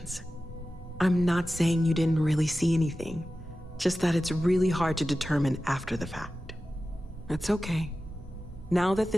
I'm not saying you didn't really see anything, just that it's really hard to determine after the fact. It's okay. Now that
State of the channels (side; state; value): both; normal; correlation 0.94